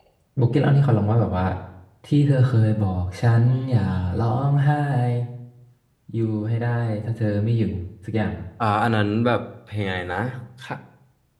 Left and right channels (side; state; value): both; identical; correlation 1.00